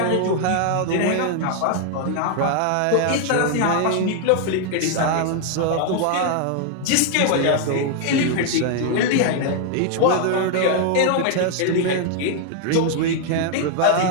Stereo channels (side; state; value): both; different; correlation 0.00